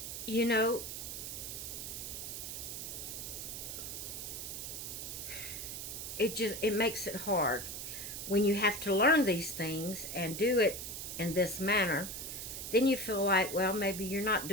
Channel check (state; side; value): noise; right; hiss, 6 dB below the sound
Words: you know, it makes it hard when you have to learn these things and do it in this manner. Then you feel like, well, maybe you're not